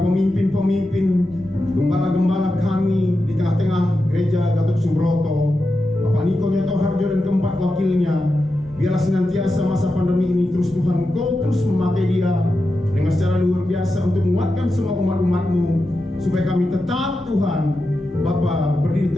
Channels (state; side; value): normal; both; correlation 0.90